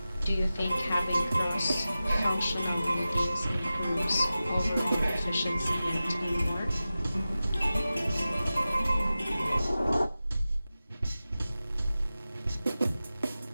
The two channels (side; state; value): both; inverted; correlation -0.95